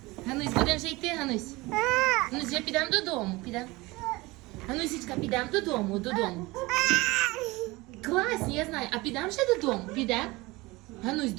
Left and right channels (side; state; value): left; quieter; 22.0 dB